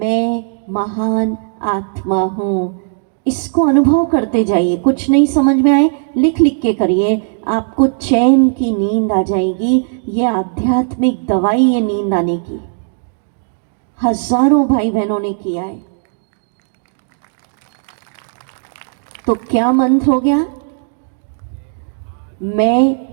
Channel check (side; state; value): left; silent; digital silence